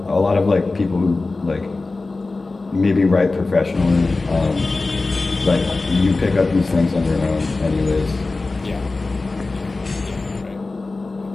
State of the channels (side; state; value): right; quieter; 3.5 dB